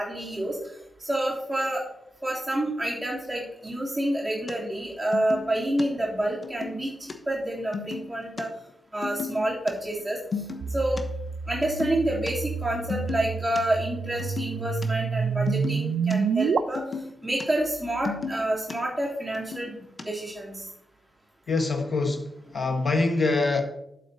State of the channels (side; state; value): both; normal; correlation 0.86